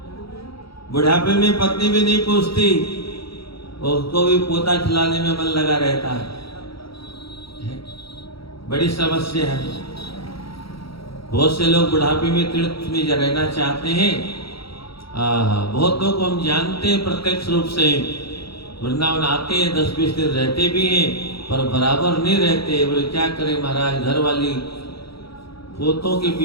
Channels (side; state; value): right; late; 0.75 ms